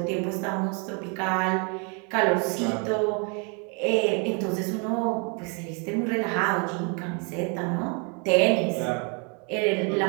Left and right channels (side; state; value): left; quieter; 35.8 dB